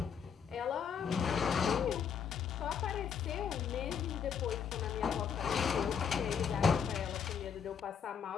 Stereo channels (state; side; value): quieter; right; 7.1 dB